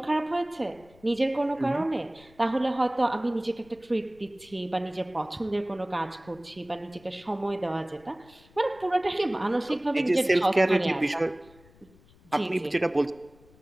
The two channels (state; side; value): noise; left; rumble, 27 dB below the sound